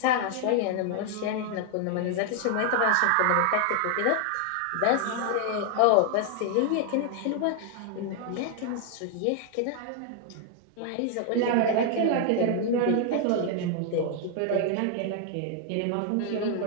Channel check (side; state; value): both; different; correlation 0.00